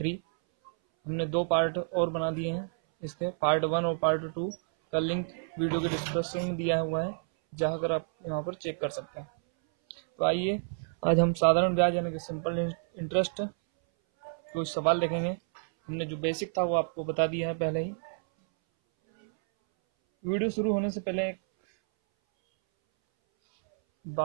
हमने 2 पार्ट और बना दिए हैं। इसके पार्ट 1 और पार्ट 2 का लिंक वीडियो के डिस्क्रिप्शन में दिया हुआ है, जहां कर आप यहाँ पर चेक कर सकते हैं। तो आइए आज हम साधारण ब्याज यानी कि सिंपल इंटरेस्ट कुछ सवाल देखेंगे। हमने जो बेसिक था वो आपको बता दिया है पहले ही। वीडियो शुरू होने से पहले एक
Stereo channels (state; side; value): silent; left; 58 dB below the other